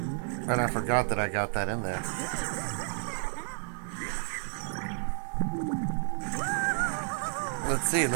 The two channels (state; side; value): silent; left; digital silence